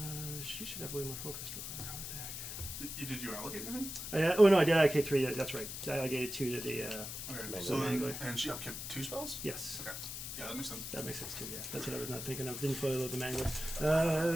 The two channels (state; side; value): noise; left; hiss, 7 dB below the sound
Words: She should have way more focused. What the heck? Did you allocate anything? Oh no, I did MK3. Yeah, that's right. I allocated 2 to the. Okay. Mangler. So then, Mangler. and she upkept 2 spells? Yes, Okay. Yeah, that makes sense. that makes sense too. Yeah, that's what I was not thinking of. Didn't fully load the